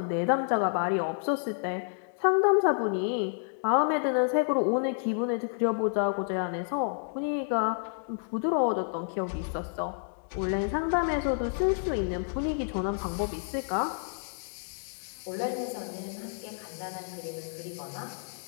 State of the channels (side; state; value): right; silent; digital silence